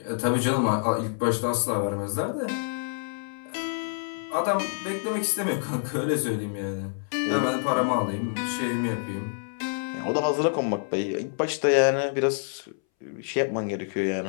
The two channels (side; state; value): right; silent; 60 dB below the other